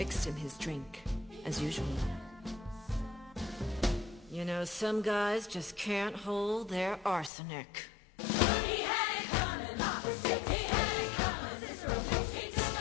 him his drink, as usual. You know, some guys just can't hold their arsenic. He had it coming. He had it coming. He took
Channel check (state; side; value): drops out; right; at 7.3 s